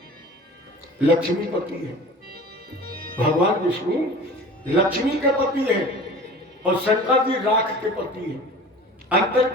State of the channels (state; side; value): normal; both; correlation 0.41